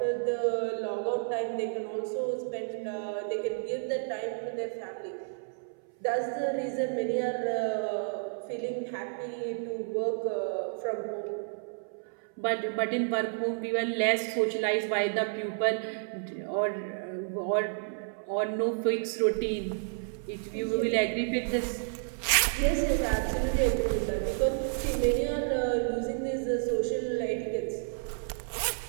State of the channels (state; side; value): silent; left; 57 dB below the other